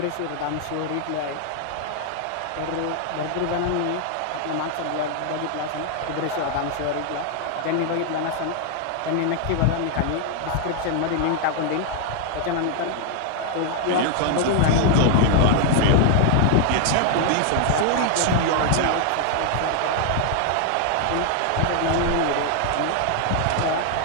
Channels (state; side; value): different; both; correlation 0.00